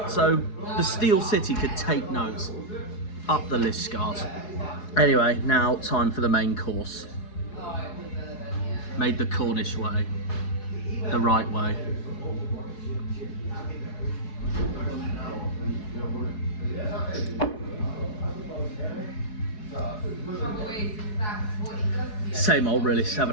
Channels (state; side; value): late; right; 4.7 ms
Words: So the Steel City could take notes. Up the Liskeard. Anyway, now time for the main course. Made the Cornish way, the right way. Same old, really,